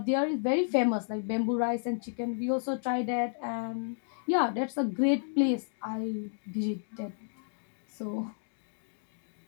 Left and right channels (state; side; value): silent; right; digital silence